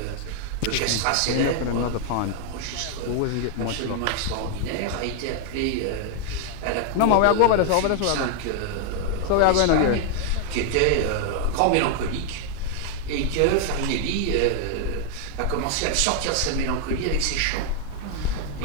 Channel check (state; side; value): different; both; correlation 0.00